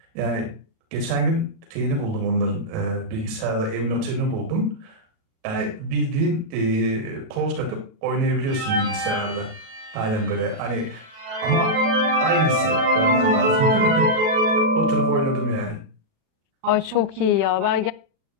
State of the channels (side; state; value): left; late; 37 ms